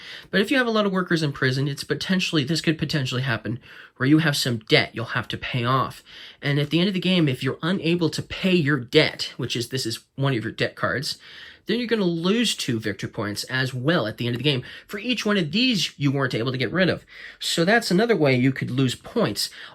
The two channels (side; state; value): both; identical; correlation 1.00